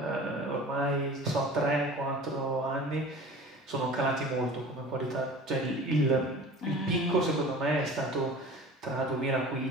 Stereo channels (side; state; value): both; normal; correlation 0.41